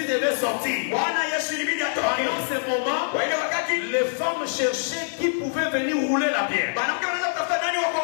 devait sortir. Bwana Yesu ilibidi atoke. Pendant ce moment, Kwa ile wakati les femmes cherchaient qui pouvait venir rouler la pierre. mwanamke anaweza kutafuta nani wa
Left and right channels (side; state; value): right; silent; digital silence